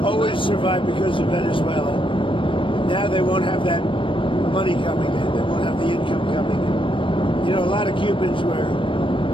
always survived because of Venezuela. Now they won't have that money coming in. They won't have the income coming in. You know, a lot of Cubans were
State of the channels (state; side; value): late; right; 0.25 ms